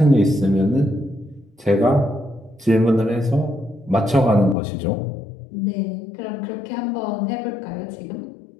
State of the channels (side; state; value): right; drops out; at 4.5 s